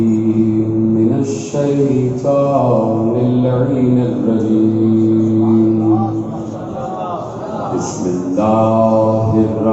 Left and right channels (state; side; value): identical; both; correlation 1.00